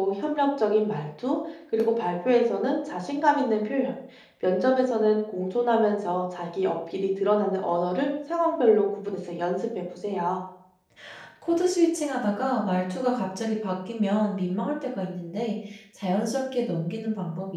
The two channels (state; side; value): identical; both; correlation 1.00